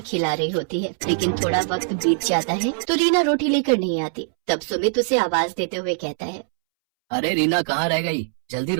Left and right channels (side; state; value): left; silent; 64 dB below the other